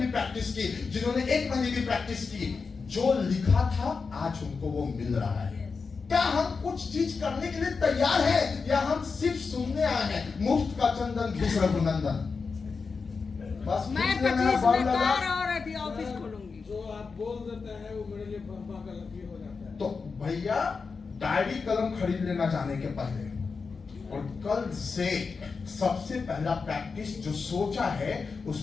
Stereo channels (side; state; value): right; quieter; 4.9 dB